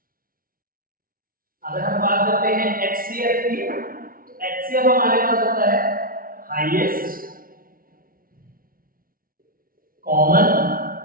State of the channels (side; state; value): left; late; 0.42 ms